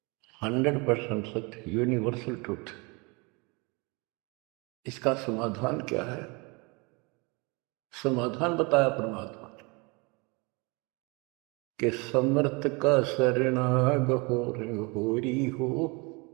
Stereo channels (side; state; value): left; quieter; 28.8 dB